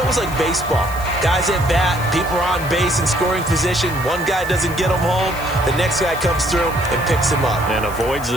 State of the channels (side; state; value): left; noise; hiss, 15 dB below the sound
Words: like baseball. Guys at bat, people are on base in scoring position. One guy doesn't get him home. The next guy comes through and picks him up. And avoids